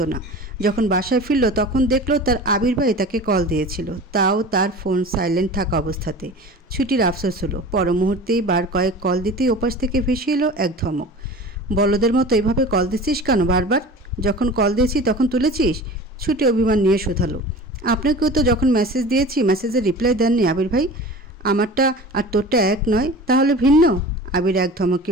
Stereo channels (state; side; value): normal; both; correlation 0.38